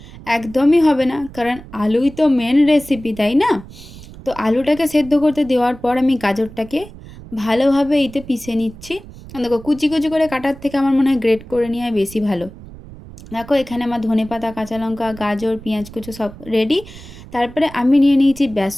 একদমই হবে না, কারণ আলুই তো মেন রেসিপি, তাই না? তো আলুটাকে সেদ্ধ করতে দেওয়ার পর আমি গাজরটাকে ভালোভাবে এতে পিষে নিচ্ছি। দেখো, কুচি কুচি করে কাটার থেকে আমার মনে হয় গ্রেট করে নেওয়া বেশি ভালো। দেখো, এখানে আমার ধনেপাতা, কাঁচা লঙ্কা, গাজর, পেঁয়াজ কুচো সব রেডি। তারপরে আমি নিয়ে নিয়েছি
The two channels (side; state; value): right; noise; rumble, 17 dB below the sound